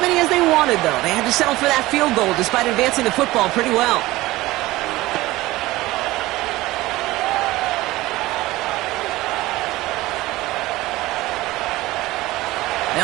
many as they wanted, though. They had to settle for that field goal despite advancing the football pretty well.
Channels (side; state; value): left; quieter; 18.4 dB